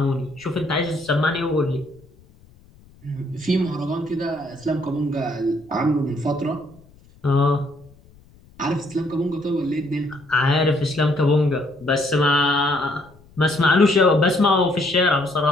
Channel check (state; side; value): noise; left; rumble, 27 dB below the sound